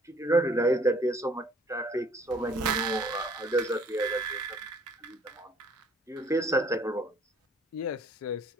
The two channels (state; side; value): normal; both; correlation 0.58